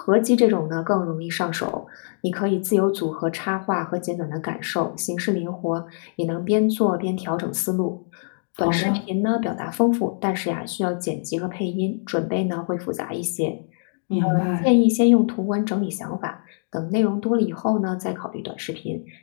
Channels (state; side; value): silent; right; digital silence